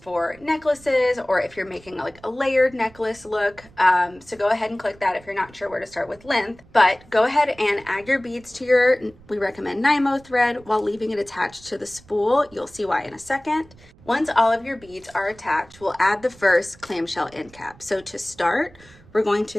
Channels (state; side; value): noise; right; rumble, 25 dB below the sound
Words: necklaces, or if you're making like a layered necklace look. So go ahead and click that if you're not sure where to start with length. But go ahead and add your beads to your, we recommend Nymo thread, while leaving it attached to the spool. You'll see why in a second. Once all of your beads are attached, we'll add the first clamshell end cap. So to start, we're going to